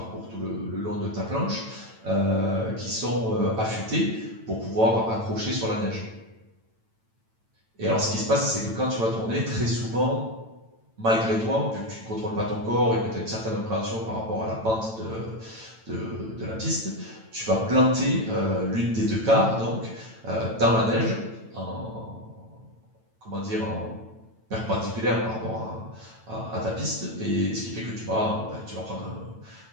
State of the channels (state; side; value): late; left; 9.0 ms